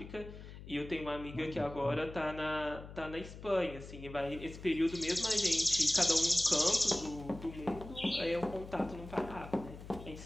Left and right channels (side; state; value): left; noise; hum, 14 dB below the sound